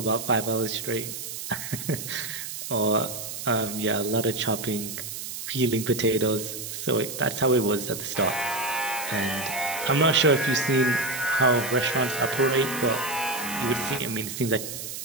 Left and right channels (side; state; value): right; noise; hiss, 7 dB below the sound